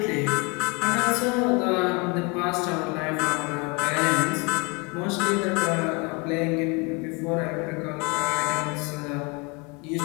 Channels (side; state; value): right; quieter; 29.6 dB